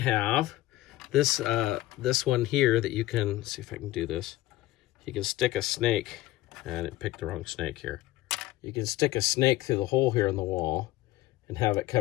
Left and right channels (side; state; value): right; quieter; 16.6 dB